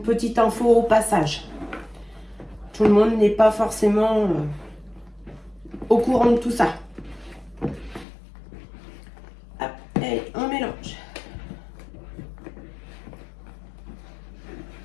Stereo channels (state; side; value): drops out; right; at 8.1 s